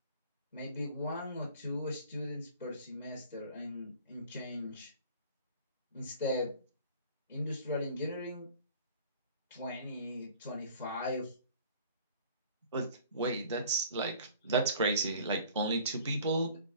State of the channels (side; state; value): both; inverted; correlation -0.48